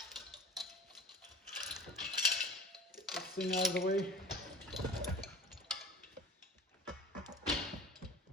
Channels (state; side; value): normal; both; correlation 0.39